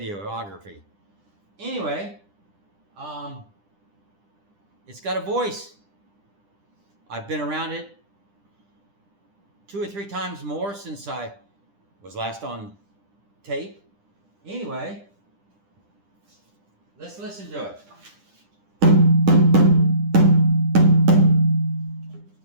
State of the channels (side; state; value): left; late; 10 ms